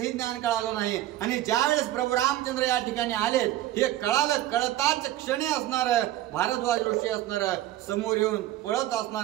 ज्ञान कळालं नाही. आणि ज्यावेळेस प्रभू रामचंद्र या ठिकाणी आले हे कळालं, कळताच क्षणी असणार भारद्वाज ऋषी असणार समोर येऊन पळत असणार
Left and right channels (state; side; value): quieter; left; 14.1 dB